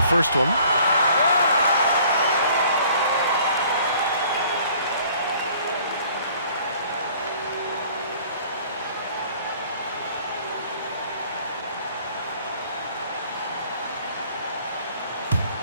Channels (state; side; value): inverted; both; correlation -0.54